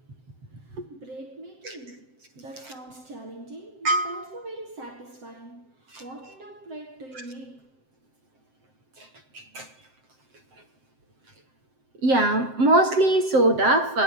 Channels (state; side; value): late; left; 7.7 ms